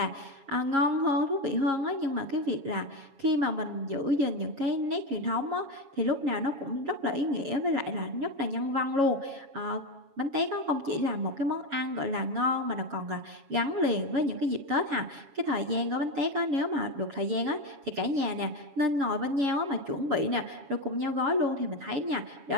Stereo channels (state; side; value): late; left; 7.2 ms